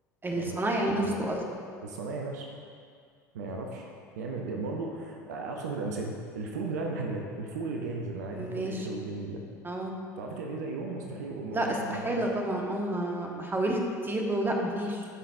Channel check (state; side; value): normal; both; correlation 0.45